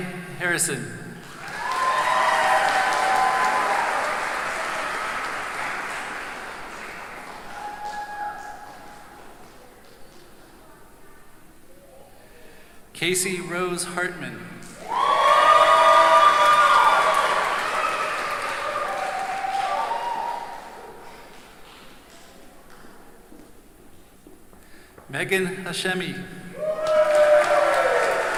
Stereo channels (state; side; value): identical; both; correlation 1.00